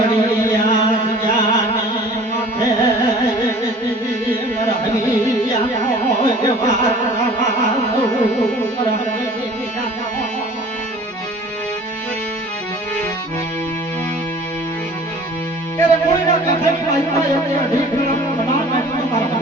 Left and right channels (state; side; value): normal; both; correlation 0.47